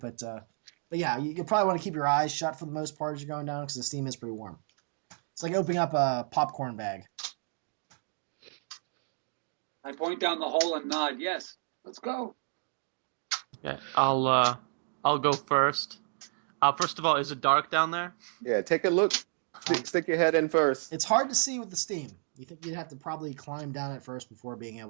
but yeah, you'll probably want to keep your eyes shut for the most part as you're going down because the steam is pretty warm. It's like opening up a popcorn bag. I point down the hole and nod. Yes, let's go. Okay, I'll go first. First of all, is it dark down there? Yeah, take a look. Stick your head in first. It's hard to see with the steam. You think you'd have to probably climb down it first before being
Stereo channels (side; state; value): left; silent; 57 dB below the other